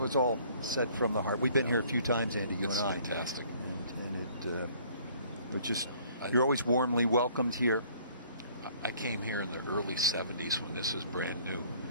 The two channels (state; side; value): inverted; both; correlation -0.57